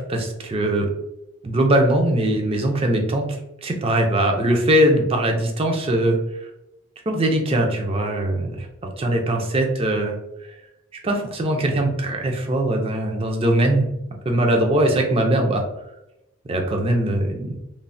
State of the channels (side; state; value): both; normal; correlation 0.52